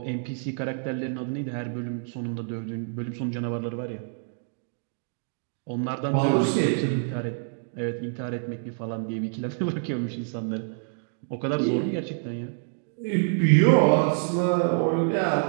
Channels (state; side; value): silent; left; digital silence